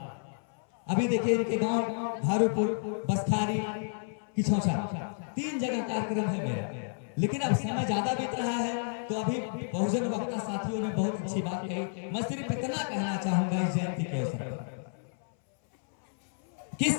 अभी देखिए इनके गांव धारूपुर, बसखारी, किछौछा, 3 जगह कार्यक्रम है मेरा। लेकिन अब समय ज्यादा बीत रहा है, तो अभी बहुजन वक्ता साथियों ने बहुत अच्छी बात कही। मैं सिर्फ इतना कहना चाहूंगा इस जयंती के अवसर पर कि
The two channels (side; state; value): right; silent; 57 dB below the other